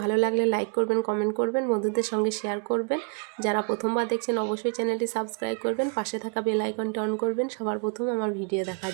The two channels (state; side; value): quieter; left; 36.4 dB